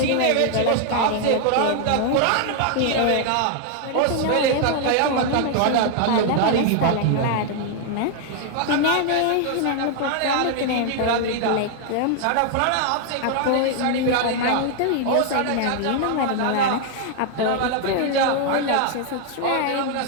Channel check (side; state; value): both; different; correlation 0.00